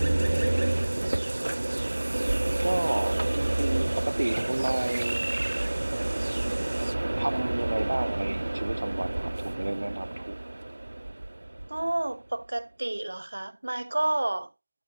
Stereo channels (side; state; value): both; inverted; correlation -1.00